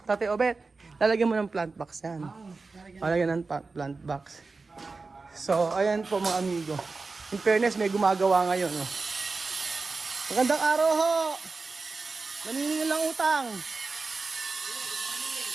Tatay Obet. Lalagyan mo ng plant box yan. Lalagyan ng plant box. So, ayan po mga amigo. In fairness, may gumagawa ngayon. Magandang araw ho! Naniningil lang utang.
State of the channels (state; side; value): quieter; left; 4.0 dB